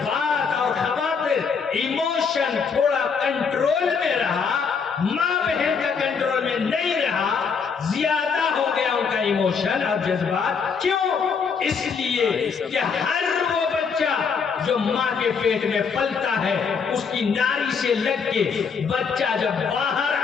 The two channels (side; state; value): right; quieter; 5.8 dB